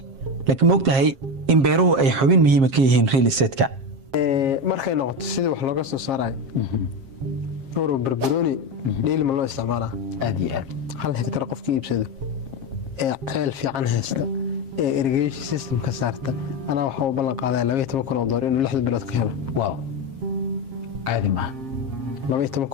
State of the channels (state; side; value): late; left; 7.4 ms